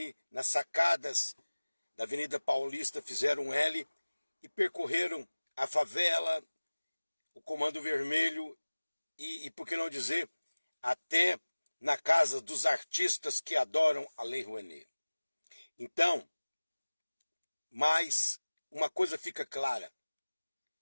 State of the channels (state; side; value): inverted; both; correlation -1.00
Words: nas sacadas da Avenida Paulista fizeram L e percorreram a favela, o Comando Vermelho e por que não dizer, até na casa dos artistas que adoram a Lei Rouanet. Então, mas uma coisa fica clara.